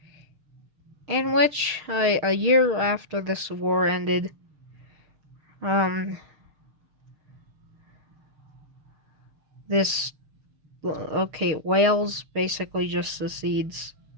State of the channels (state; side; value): late; left; 6.6 ms